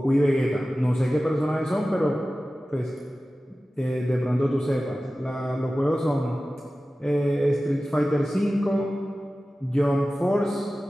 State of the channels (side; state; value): both; normal; correlation 0.96